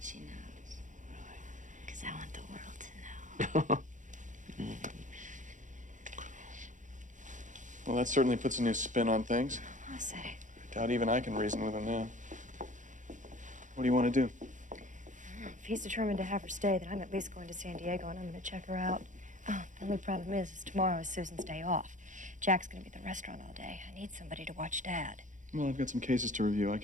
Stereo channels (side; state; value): left; late; 0.36 ms